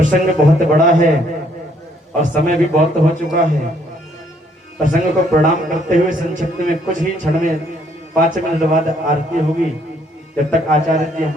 बहुत बड़ा है और समय भी बहुत हो चुका है, प्रसंग को प्रणाम करते हुए संक्षिप्त में कुछ ही क्षण में 5 मिनट बाद आरती होगी। जब तक आचार्य जी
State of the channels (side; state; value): both; normal; correlation 0.67